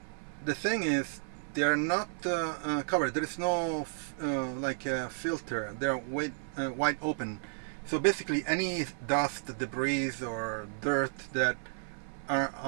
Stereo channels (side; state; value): left; silent; 56 dB below the other